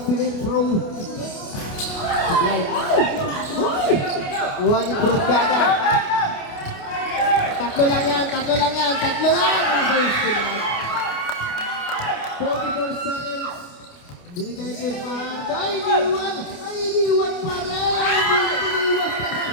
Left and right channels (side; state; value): right; late; 29 ms